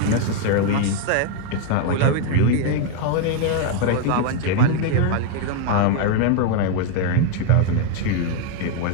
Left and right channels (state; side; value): different; both; correlation 0.01